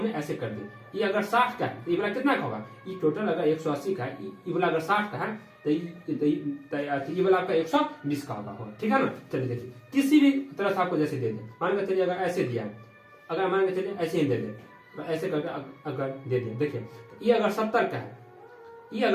ऐसे कर दी, ये अगर 60 का है तो ये वाला कितना का होगा, ये टोटल अगर 180 का है, ये वाला अगर 60 का है तो ये वाला आपका 120 का होगा, ठीक है ना। चलिए देखिए किसी भी तरह से आपको जैसे दे दे, मान के चलिए अगर ऐसे दिया है, अगर मान के चलिए ऐसे ही दे दे, ऐसे करके अगर दे दिया, देखिए ये अगर 70 का है, ये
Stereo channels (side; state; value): both; identical; correlation 1.00